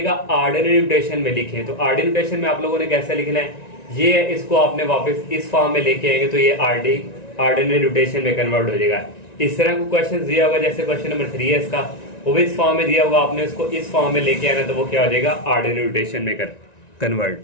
ऑर्डिनरी नोटेशन में लिखें। तो ऑर्डिनरी नोटेशन में आप लोगों ने कैसे लिखना है, ये इसको आपने वापस इस फॉर्म में लेके आएंगे तो ये ऑर्डिनरी नोटेशन में कन्वर्ट हो जाएगा। इस तरह को क्वेश्चन दिया होगा, जैसे क्वेश्चन नंबर 3 है इसका, वो भी इस फॉर्म में दिया होगा, आपने इसको इस फॉर्म में लेके आना तो वो क्या हो जाएगा ऑर्डिनरी नोटेशन में कन्वर्ट।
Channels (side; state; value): right; late; 1.9 ms